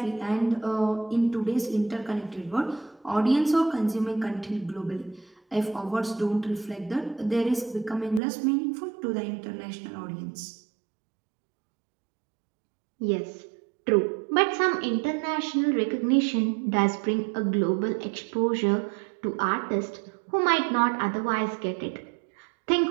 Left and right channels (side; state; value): left; drops out; at 8.2 s